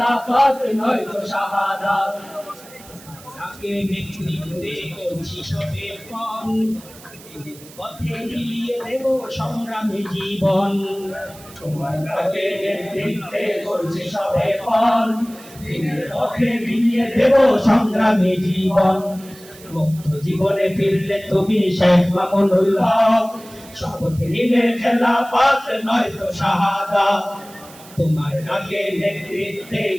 নয় তো শাহাদাত। তাকে নেতৃত্বে করছি সবে পণ, পথে মিলিয়ে দেব সংগ্রামী জীবন। তোমার তাকে নেতৃত্বে করছি সবে পণ, পথে মিলিয়ে দেব সংগ্রামী জীবন। মুক্ত জীবনে ফিরলে তুমি শাইখ মামুনুল হক, শপথ নিলে খেলাফত নয় তো শাহাদাত। তোমার তাকে নেতৃত্বে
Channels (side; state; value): right; noise; hiss, 20 dB below the sound